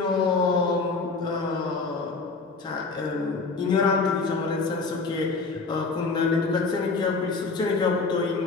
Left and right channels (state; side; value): quieter; right; 4.1 dB